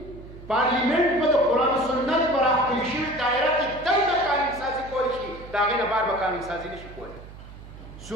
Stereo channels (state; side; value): noise; right; hum, 16 dB below the sound